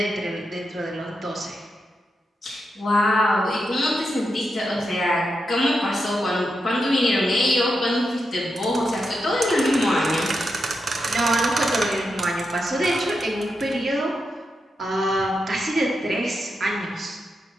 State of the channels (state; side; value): normal; both; correlation 0.86